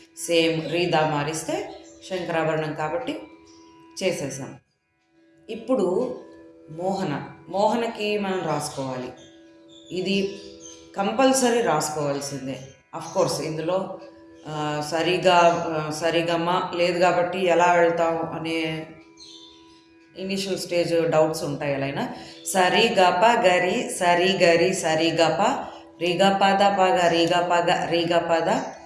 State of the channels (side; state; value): both; identical; correlation 1.00